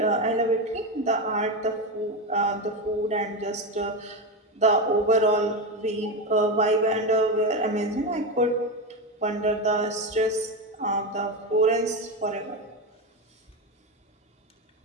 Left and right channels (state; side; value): normal; both; correlation 0.14